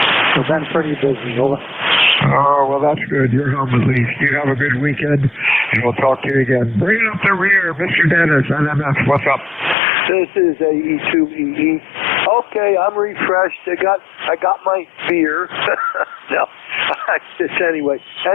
we've been pretty busy. Over. Oh, well, that's good. You're home at least. You have a good weekend, and we'll talk to you again. Bring it up the rear, Mr. Dennis, NMF. What's up? This is AE2EE. Okay, I'm refreshed. I got my beer. No, just anyway.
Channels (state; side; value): drops out; right; at 9.8 s